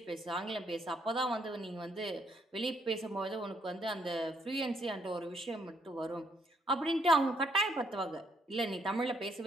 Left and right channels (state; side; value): normal; both; correlation 0.72